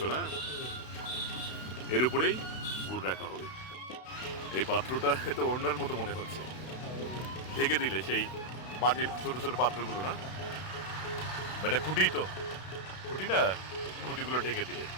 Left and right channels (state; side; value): late; right; 32 ms